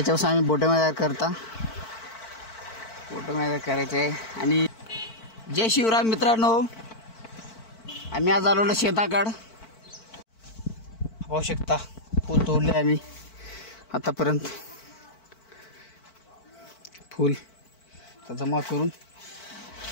आम्ही बोटं तयार करता। बोटं तयार करायचे आहे। आणि जय शिवराम मित्रांनो, आम्ही आज आलो शेताकडं। पाहू शकता फूल तोडले आम्ही आतापर्यंत। फूल तर जमा करून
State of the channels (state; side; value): late; right; 4.5 ms